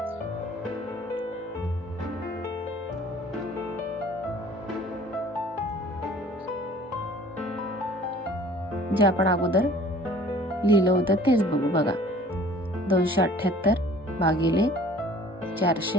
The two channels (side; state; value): both; normal; correlation 0.51